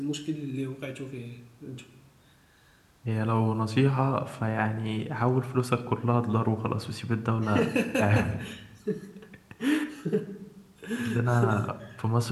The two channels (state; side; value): identical; both; correlation 1.00